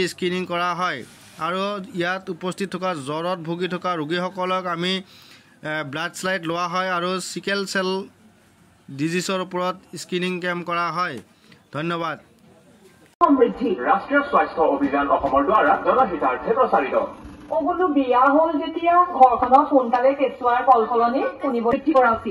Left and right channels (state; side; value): identical; both; correlation 1.00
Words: স্ক্ৰিনিং কৰা হয় আৰু ইয়াত উপস্থিত থকা জ্বৰত ভুগি থকা ৰোগীসকলক আমি ব্লাড স্লাইড লোৱা হয় আৰু সিকেল সেল ডিজিজৰ ওপৰত স্ক্ৰিনিং কেম্প কৰা হয়। ধন্যবাদ। সমৃদ্ধি ৰাষ্ট্ৰীয় স্বাস্থ্য অভিযান অসমৰ দ্বাৰা জনহিতাৰ্থে প্ৰচাৰিত। বোলো বিয়া হ'ল যেতিয়া ঘৰখনত সোনকালে কেঁচুৱাৰ কলকলনি শুনিব বৃদ্ধি কৰা